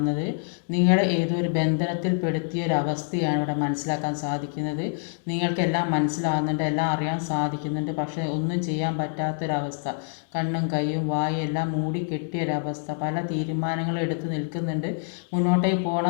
നിങ്ങളെ ഏതോ ഒരു ബന്ധനത്തിൽ പെടുത്തിയൊരവസ്ഥയാണ് ഇവിടെ മനസ്സിലാക്കാൻ സാധിക്കുന്നത്. നിങ്ങൾക്കെല്ലാം മനസ്സിലാകുന്നുണ്ട്, എല്ലാം അറിയാൻ സാധിക്കുന്നുണ്ട്. പക്ഷേ ഒന്നും ചെയ്യാൻ പറ്റാത്തൊരവസ്ഥ, കണ്ണും കൈയും വായും എല്ലാം മൂടിക്കെട്ടിയൊരവസ്ഥ. പല തീരുമാനങ്ങളും എടുത്ത് നിൽക്കുന്നുണ്ട്, മുന്നോട്ടേക്ക്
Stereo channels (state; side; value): silent; right; digital silence